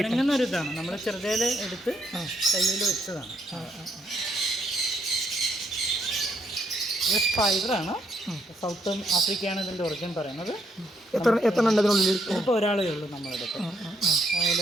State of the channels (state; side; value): normal; both; correlation 0.74